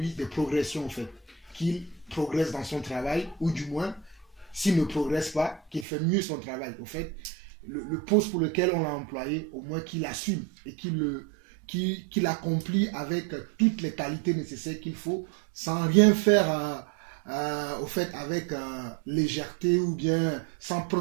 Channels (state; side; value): drops out; left; at 5.9 s